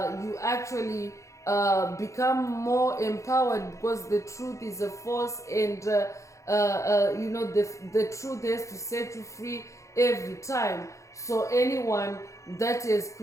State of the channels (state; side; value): late; right; 0.15 ms